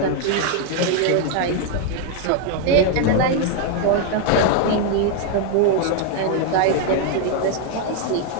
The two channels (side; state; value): both; different; correlation 0.01